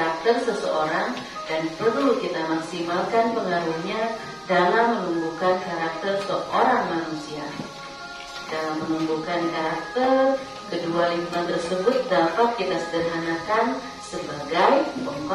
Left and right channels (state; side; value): identical; both; correlation 1.00